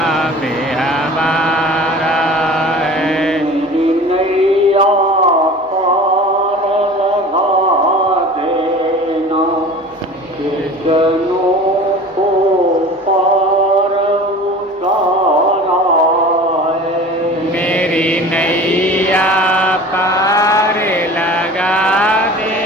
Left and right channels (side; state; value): both; normal; correlation 0.40